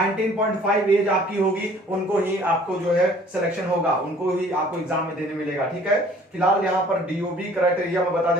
एज आपकी होगी, उनको ही आपको जो है सिलेक्शन होगा, उनको ही आपको एग्जाम में देने मिलेगा। ठीक है, फिलहाल यहाँ पर डीओबी क्राइटेरिया मैं बता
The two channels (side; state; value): both; normal; correlation 0.54